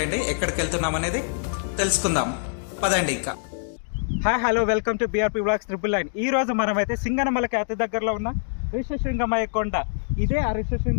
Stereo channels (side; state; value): right; silent; digital silence